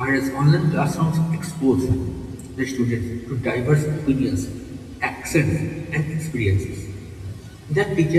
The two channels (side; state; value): both; identical; correlation 1.00